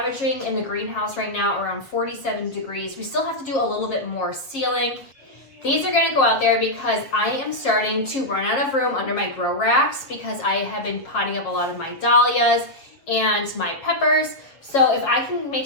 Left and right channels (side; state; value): right; late; 7.4 ms